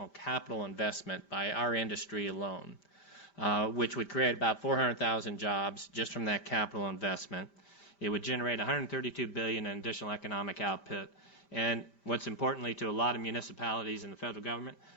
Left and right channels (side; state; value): right; late; 5.1 ms